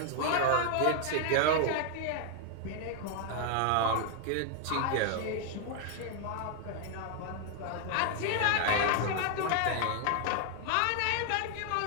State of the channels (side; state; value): both; different; correlation 0.00